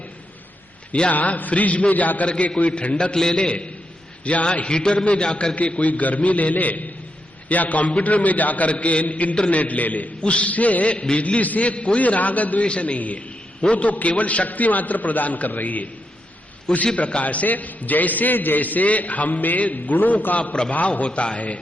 या फ्रिज में जाकर के कोई ठंडक ले ले, या हीटर में जाकर के कोई गर्मी ले ले, या कंप्यूटर में जाकर के इंटरनेट ले ले, उससे बिजली से कोई राग द्वेष नहीं है, वो तो केवल शक्ति मात्र प्रदान कर रही है। उसी प्रकार से जैसे जैसे हम में गुणों का प्रभाव होता है,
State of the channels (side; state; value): both; normal; correlation 0.83